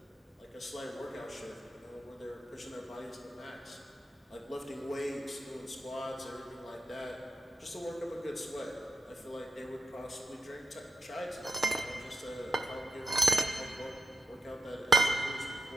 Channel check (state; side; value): normal; both; correlation 0.90